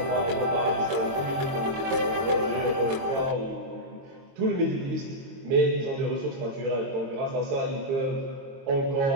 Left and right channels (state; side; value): late; left; 22 ms